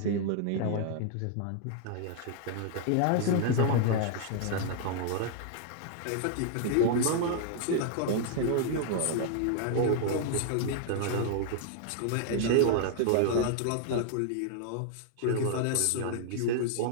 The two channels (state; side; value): different; both; correlation 0.00